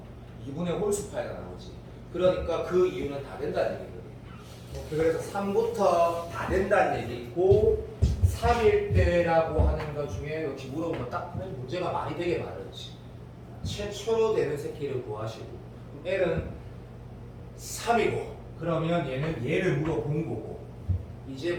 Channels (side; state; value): both; identical; correlation 1.00